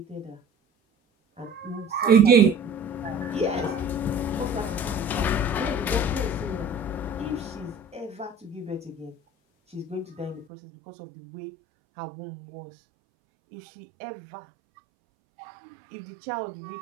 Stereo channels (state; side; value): drops out; left; at 10.5 s